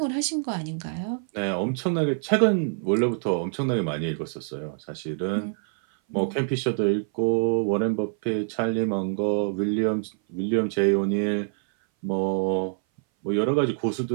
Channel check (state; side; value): silent; left; 58 dB below the other